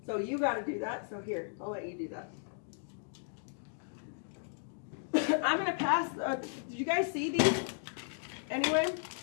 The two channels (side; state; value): right; silent; digital silence